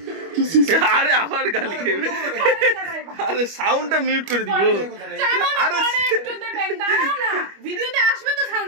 আরে আবার গালি খাইবে। আরে সাউন্ডটা মিউট করে দিব। আরে একটু দেবেন, দাঁড়াও না, ভিডিওতে আসবে তো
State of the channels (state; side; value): late; left; 25 ms